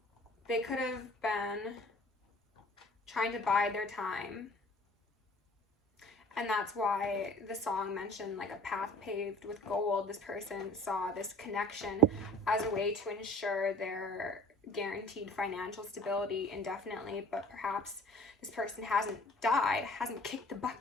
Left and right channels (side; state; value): both; normal; correlation 0.49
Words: they could have been trying to bide their time, and that's why the song mentioned like a path paved with gold. This person saw this connection as a way to ensure their guaranteed financial stability indefinitely, but perhaps this person hasn't died, hasn't kicked the